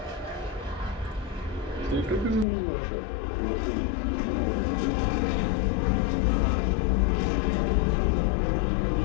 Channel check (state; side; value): drops out; right; at 2.5 s